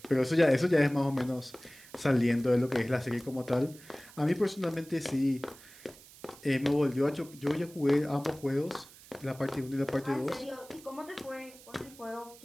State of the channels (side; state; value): right; noise; hiss, 21 dB below the sound